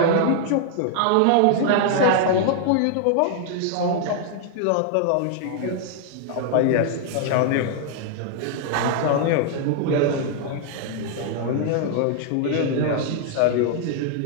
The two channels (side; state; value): both; different; correlation 0.00